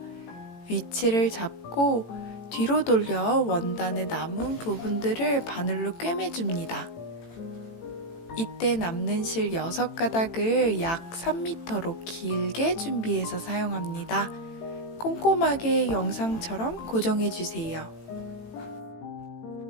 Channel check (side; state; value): right; late; 18 ms